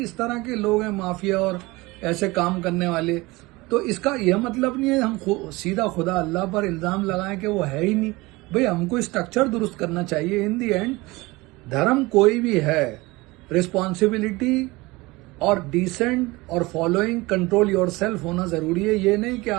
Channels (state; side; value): quieter; left; 22.2 dB